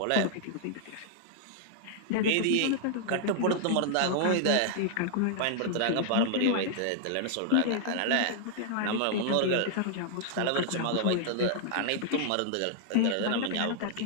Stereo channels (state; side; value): different; both; correlation -0.01